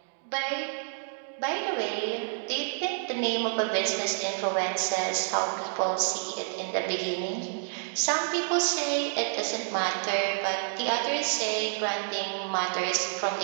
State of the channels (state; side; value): silent; left; digital silence